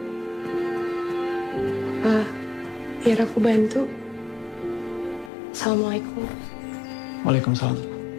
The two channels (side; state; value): right; drops out; at 5.3 s